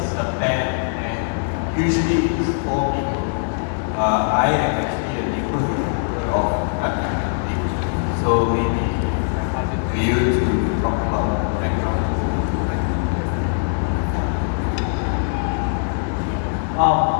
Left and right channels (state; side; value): silent; right; digital silence